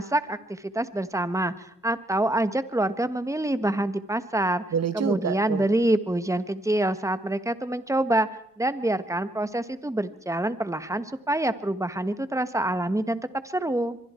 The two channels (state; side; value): normal; both; correlation 0.74